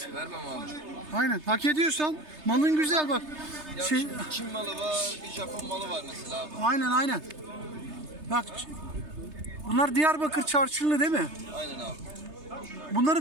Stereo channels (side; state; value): left; late; 3.3 ms